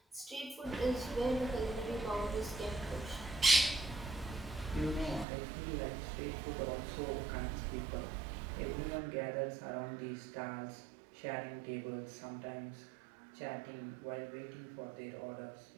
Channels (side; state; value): left; drops out; at 5.2 s